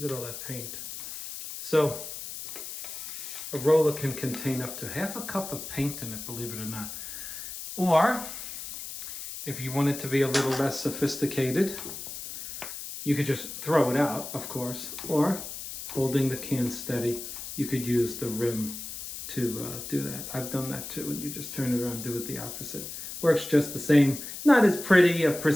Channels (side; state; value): left; noise; hiss, 9 dB below the sound